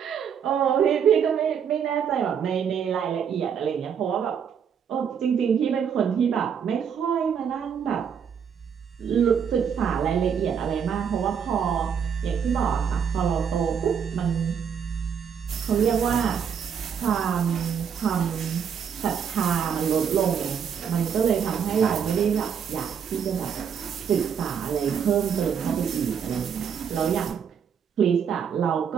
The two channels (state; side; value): quieter; left; 7.5 dB